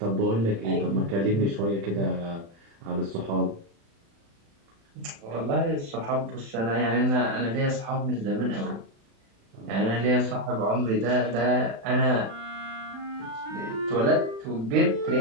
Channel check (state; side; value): late; left; 36 ms